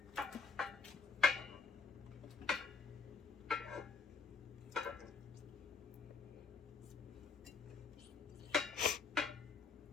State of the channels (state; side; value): quieter; right; 5.0 dB